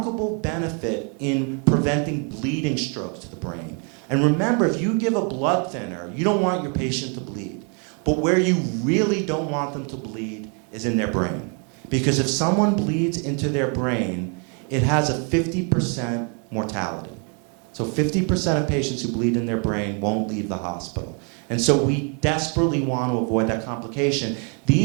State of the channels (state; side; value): quieter; left; 38.3 dB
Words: benefit in preventing bleeding strokes to the brain. And remember, if you give a blood thinner, you don't want your patient to bleed. But where you really don't want them to bleed is in their brain. Because if someone bleeds into their brain, it has a 50% mortality. So 50% of patients who bleed in their brain won't leave the hospital. And so we desperately want to avoid that complication.